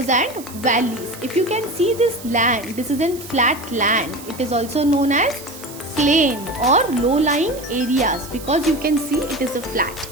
and valleys. If you can see this land, this is a flat land. It is also known as plain or low-lying areas because you can see it is a flat.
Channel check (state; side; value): noise; right; hiss, 16 dB below the sound